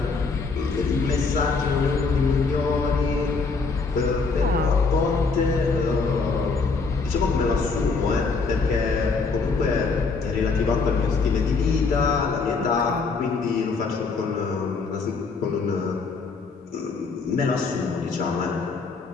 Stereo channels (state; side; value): quieter; right; 4.4 dB